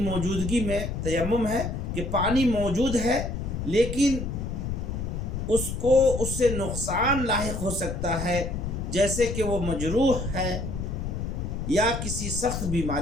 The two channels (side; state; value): left; noise; rumble, 4 dB below the sound